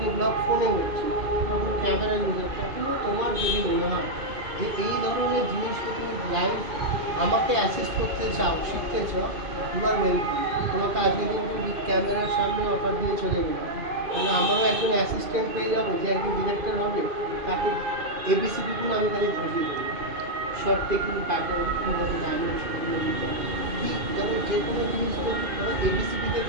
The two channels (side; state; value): left; late; 2.5 ms